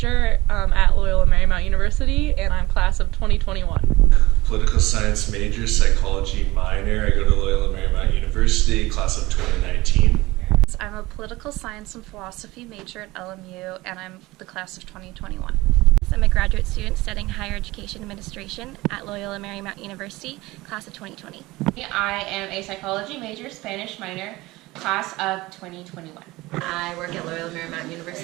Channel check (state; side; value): quieter; left; 19.9 dB